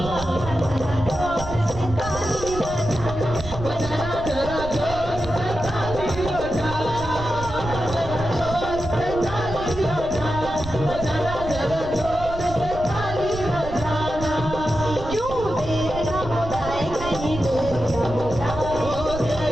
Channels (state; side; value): noise; right; rumble, 10 dB below the sound